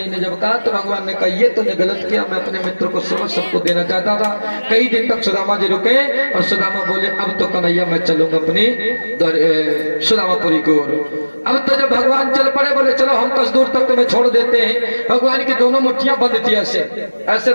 ने जब कहा तो भगवान ने कहा ये तुमने गलत किया, मैं अपने मित्र को समझ सबको देना चाहता था। कई दिन तक सुदामा जी रुके और सुदामा बोले अब तो कन्हैया मैं चलूंगा अपनी सुदामापुरी की ओर। अब तो जब भगवान चल पड़े बोले चलो हम 10 दूर तक तुम्हें छोड़ देते हैं। भगवान की दोनों मुट्ठियां बंद थी, ऐसे ऐसे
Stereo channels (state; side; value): inverted; both; correlation -1.00